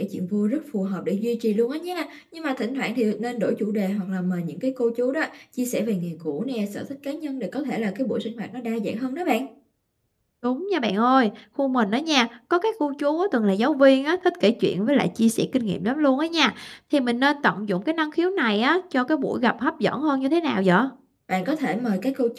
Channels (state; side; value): identical; both; correlation 1.00